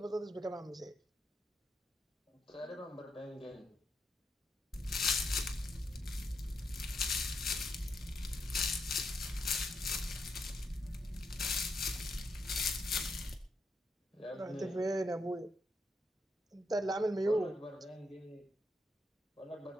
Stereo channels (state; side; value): normal; both; correlation 0.81